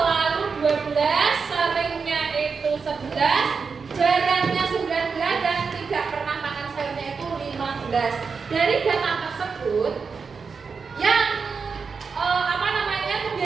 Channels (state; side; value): quieter; left; 5.3 dB